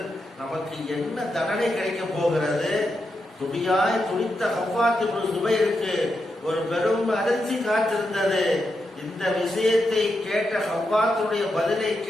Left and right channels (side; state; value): both; normal; correlation 0.85